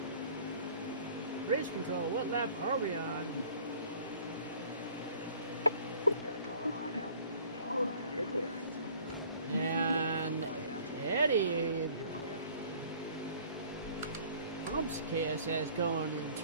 Race control. What lap are we on? Got a car high now. All right, you're clear. And Eddie You're clear. bumps KSS going in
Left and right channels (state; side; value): inverted; both; correlation -0.52